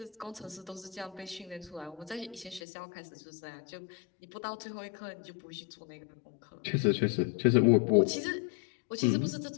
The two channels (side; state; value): right; drops out; at 2.6 s